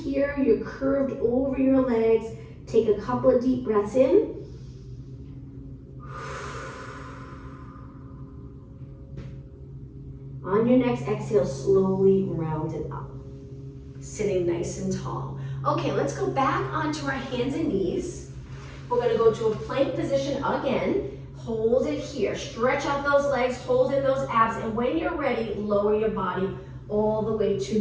You're curved over your legs. Take a couple of deep breaths in. On your next exhale, slowly round it up. Sitting nice and tall. Okay, let's go back onto our hands and knees. We're gonna go to a plank position again. Hold it here. Stretch out those legs, hold in those abs, and when you're ready, lower your body all the way to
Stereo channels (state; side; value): identical; both; correlation 1.00